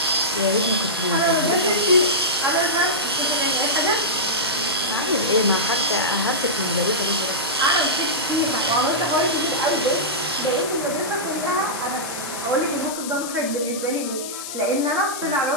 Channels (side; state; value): left; noise; hiss, 8 dB below the sound